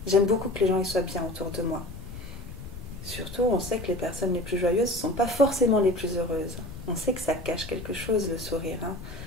J'aime beaucoup que les gens ils soient bien autour de moi. Surtout, on sait que les personnes les plus joyeuses ne sont pas forcément les plus heureuses. On sait que ça cache quelque chose, le sourire. Hein.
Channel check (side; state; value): left; noise; rumble, 12 dB below the sound